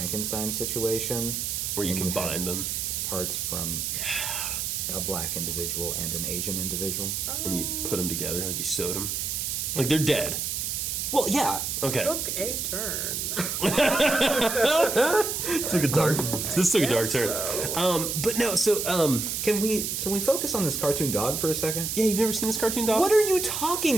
situation? Where you and had combine them. Parts from a black individual and an Asian individual? And you put them together, like you sewed them. Like they're dead. Well, yeah. Okay. Took a turn. Took a dark. This took a dark turn. But no. So Can we focus on this cartoon dog for a second? yeah, you've never seen this cartoon dog? What are you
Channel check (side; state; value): right; noise; hiss, 2 dB below the sound